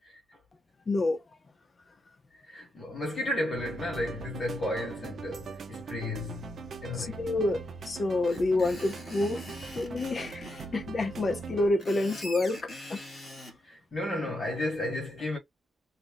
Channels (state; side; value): normal; both; correlation 0.83